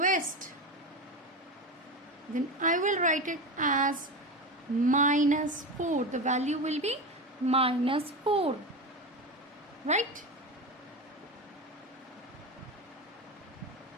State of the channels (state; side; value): normal; both; correlation 0.21